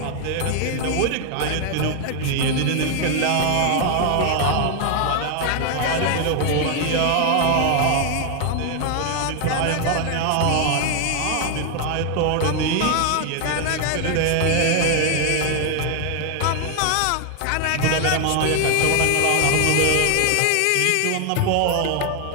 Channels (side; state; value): both; different; correlation 0.00